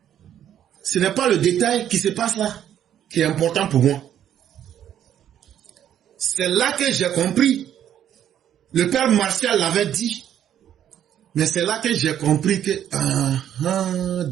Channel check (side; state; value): left; quieter; 10.3 dB